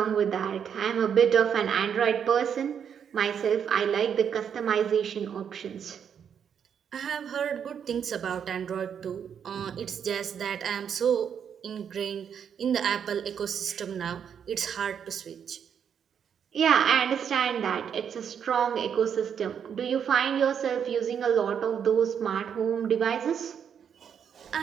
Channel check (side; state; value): left; quieter; 7.9 dB